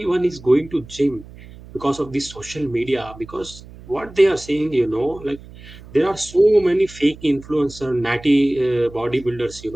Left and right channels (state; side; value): noise; right; hum, 18 dB below the sound